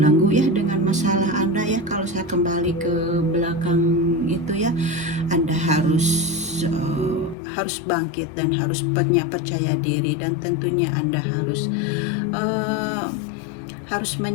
ya dengan masalah Anda ya. Kalau saya kembali ke belakang gitu ya, Anda harus bangkit dan harus punya percaya diri, dan tentunya Anda harus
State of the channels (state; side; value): drops out; right; at 7.4 s